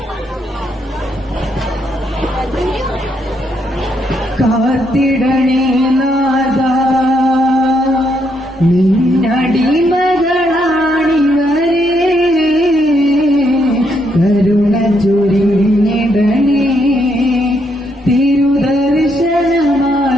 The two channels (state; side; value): normal; both; correlation 0.76